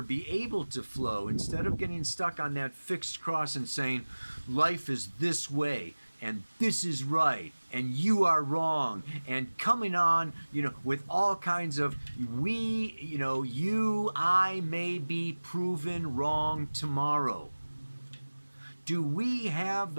be able to flow instead of getting stuck on that fixed cross and saying life is this way and this is right and you are wrong, and coming on, with all kinds of I may be proven wrong tomorrow. Do we have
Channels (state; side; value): inverted; both; correlation -1.00